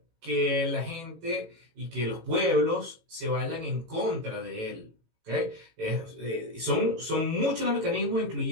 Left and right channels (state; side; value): late; left; 18 ms